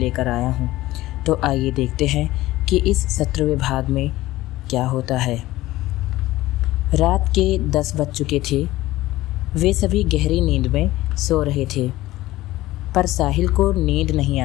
आया हूँ। तो आइए देखते हैं कि इस 17वें भाग में क्या होता है। रात के 10 बज चुके थे। वे सभी गहरी नींद में सो रहे थे, पर साहिल को नींद नहीं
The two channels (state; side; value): quieter; right; 16.9 dB